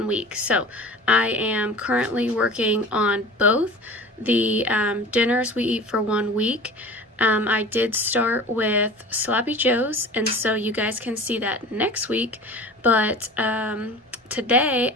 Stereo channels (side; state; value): both; normal; correlation 0.38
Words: week. So I am currently working on both. The dinners we eat for 1 week, I did start with Sloppy Joe's, and so you guys can see that next week, but today